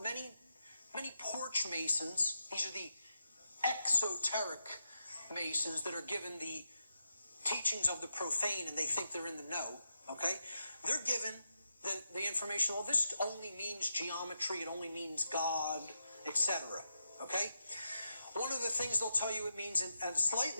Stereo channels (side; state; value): both; inverted; correlation -0.85